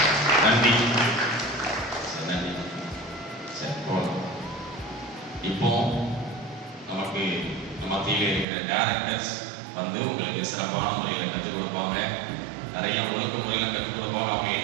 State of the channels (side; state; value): left; drops out; at 8.5 s